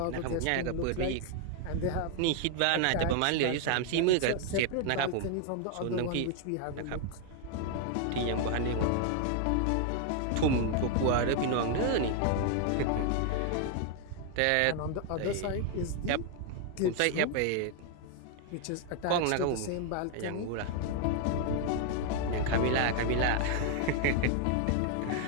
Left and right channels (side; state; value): both; different; correlation 0.00